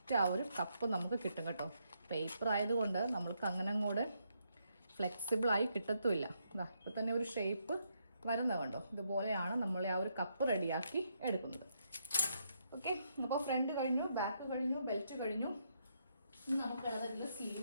ആ ഒരു കപ്പ് നമുക്ക് കിട്ടും കേട്ടോ. പേപ്പർ ആയതുകൊണ്ട് നമ്മൾക്ക് അങ്ങനെ അങ്ങോട്ട് ഫ്ലെക്സിബിളായി കിട്ടത്തുമില്ല. ഇപ്പോൾ തന്നെ ഒരു ഷേപ്പ് വരുന്നത് കണ്ടോ. ഇതുപോലെയാണ് നമ്മൾ ആ ഒരു കപ്പ് റെഡിയാക്കി എടുക്കുന്നത്. ഓക്കെ, അപ്പോൾ ഫ്രണ്ട് കഴിഞ്ഞു, ബാക്ക് കഴിഞ്ഞു, ബെൽറ്റ് കഴിഞ്ഞു. ഇനി നമുക്കുള്ളതിൽ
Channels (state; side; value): inverted; both; correlation -0.77